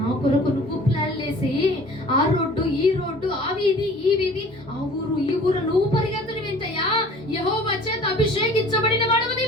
కొరకు నువ్వు ప్లాన్ వేసి ఆ రోడ్డు ఈ రోడ్డు, ఆ వీధి ఈ వీధి, ఆ ఊరు ఈ ఊరు నువ్వు పరిగెత్తడం ఏంటయ్యా? యెహోవా చేత అభిషేకించబడిన వాడవు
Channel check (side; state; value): both; normal; correlation 0.47